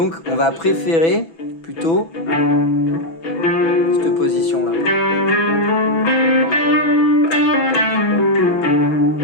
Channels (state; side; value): late; right; 6.1 ms